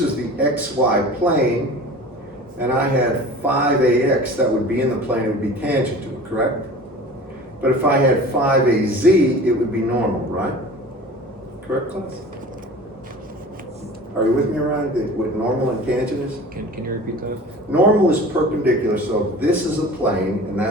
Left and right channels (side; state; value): both; normal; correlation 0.40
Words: the XY plane, and I had 5AX, that would be in the plane, it would be tangent to it, correct? But if I had 5AZ, it would be normal, right? Correct, class? Are you with me around what normal and tangent is? Can you repeat that? Normal is perpendicular, so this is a plane, and